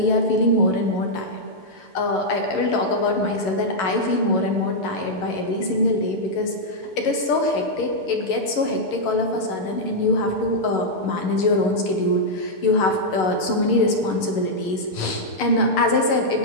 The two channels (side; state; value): right; late; 6.8 ms